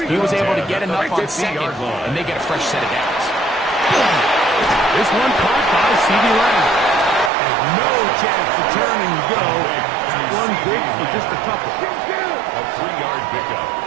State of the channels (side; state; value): left; drops out; at 7.3 s